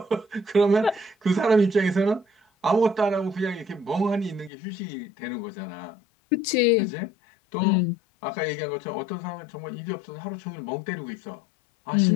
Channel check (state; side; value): drops out; right; at 4.5 s